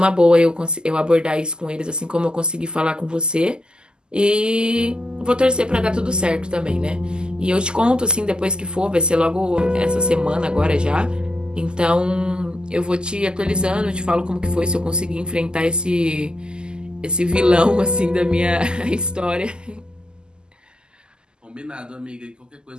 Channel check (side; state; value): left; late; 0.046 ms